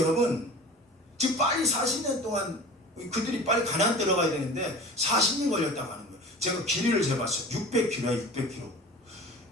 지금 빨리 40년 동안 그들이 빨리 가나안 들어가야 되는데 40년 걸렸다고 하는 거예요. 제가 길이를 재봤어요. 600km야 600km.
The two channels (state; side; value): normal; both; correlation 0.37